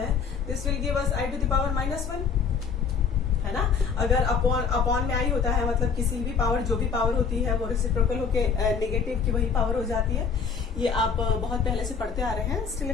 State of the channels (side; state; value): right; quieter; 6.0 dB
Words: this will give us i to the power -1, है ना। अगर अपॉन में आई होता है मतलब किसी भी पावर, जो भी पावर होती है वो रेसिप्रोकल होके नेगेटिव की वही पावर हो जाती है। ये आप बहुत पहले से पढ़ते आ रहे हैं। Still